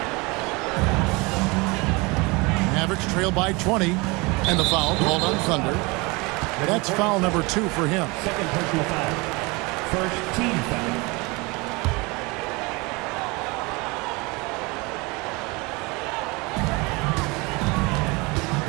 Mavericks trail by 20, and the foul called on Thunder. That's foul number 2 for him. Second personal foul. First team foul.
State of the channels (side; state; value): left; quieter; 26.0 dB